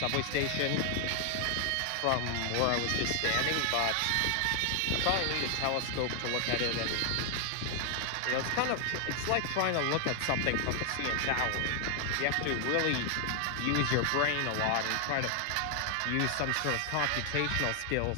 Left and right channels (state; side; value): different; both; correlation 0.00